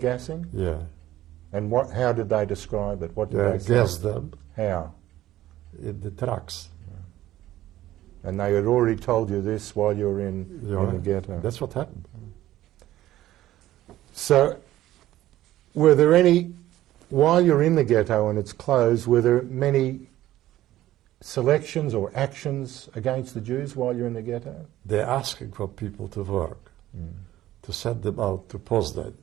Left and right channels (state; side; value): quieter; left; 14.4 dB